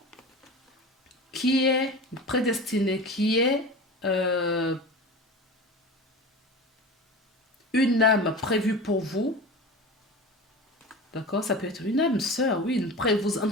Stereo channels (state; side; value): normal; both; correlation 0.32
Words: qui est prédestiné, qui est une âme prévue pour vous. D'accord? Ça peut être une âme sœur, oui. En